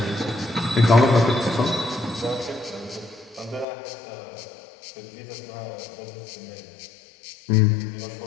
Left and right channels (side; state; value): right; drops out; at 3.7 s